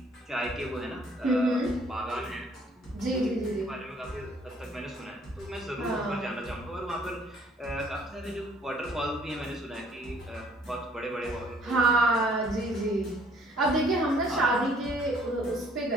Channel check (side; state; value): both; normal; correlation 0.59